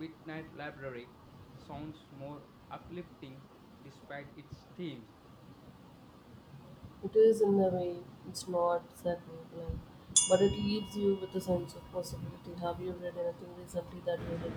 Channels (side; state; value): both; identical; correlation 1.00